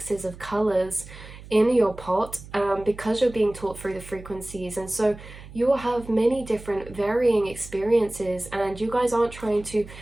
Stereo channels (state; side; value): noise; right; hum, 17 dB below the sound